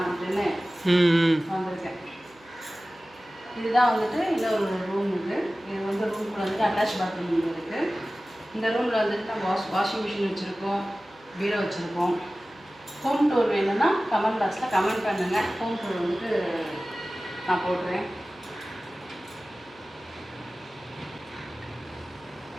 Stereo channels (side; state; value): right; noise; hum, 28 dB below the sound